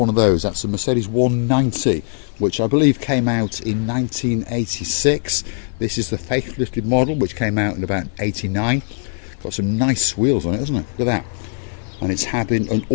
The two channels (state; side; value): silent; right; 58 dB below the other